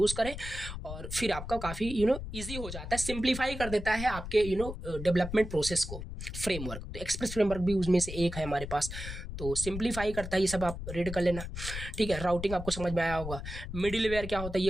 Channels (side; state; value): left; noise; rumble, 8 dB below the sound